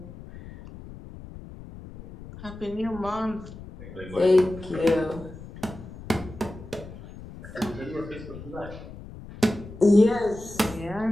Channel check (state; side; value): noise; left; rumble, 15 dB below the sound